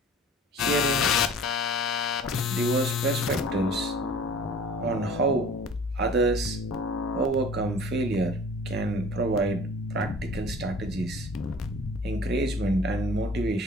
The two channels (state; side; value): normal; both; correlation 0.46